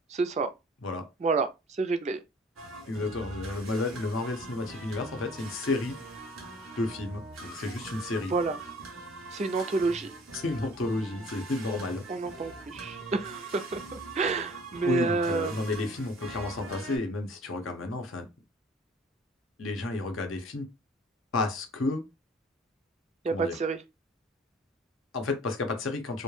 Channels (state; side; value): normal; both; correlation 0.51